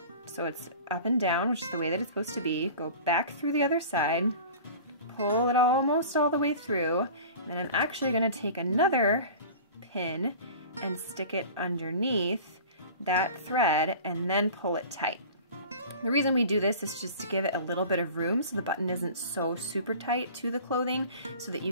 so it's up and down, which is the way that it's supposed to be. Go back through the other side, pull it almost all the way through, and then I'm actually going to take another pin and stick it underneath that thread and then pull it tight. The reason we do this is just to give it a little bit of room so the button isn't so super tight to the clothing, so that you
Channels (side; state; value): both; inverted; correlation -0.40